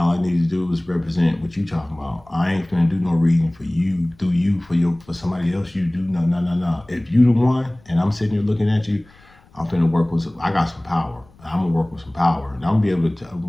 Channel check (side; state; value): left; noise; rumble, 28 dB below the sound